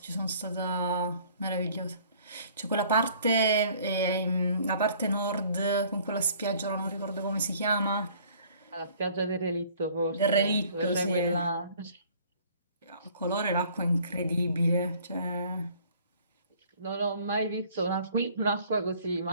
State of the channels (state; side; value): inverted; both; correlation -0.55